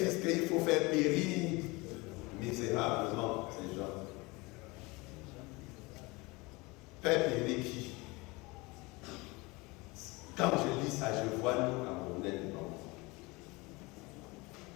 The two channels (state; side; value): quieter; right; 24.5 dB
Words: disent qu'il faut faire périr misérablement ces gens. Faire périr qui? Quand je lis ça, je vois nous Camerounais dedans.